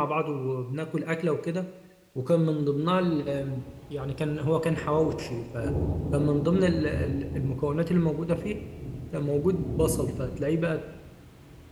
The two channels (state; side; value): identical; both; correlation 1.00